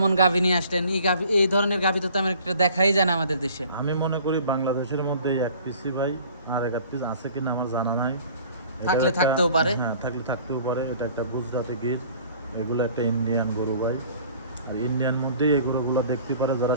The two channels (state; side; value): inverted; both; correlation -0.51